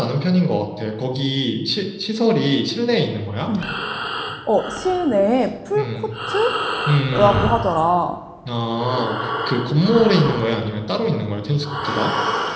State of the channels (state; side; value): identical; both; correlation 1.00